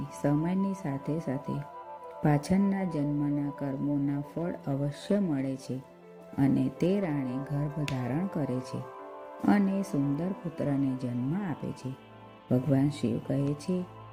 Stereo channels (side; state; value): both; identical; correlation 1.00